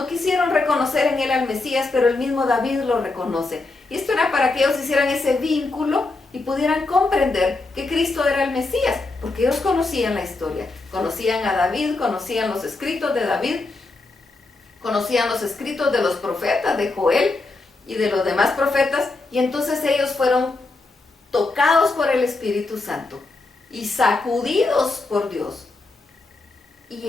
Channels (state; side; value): quieter; right; 3.4 dB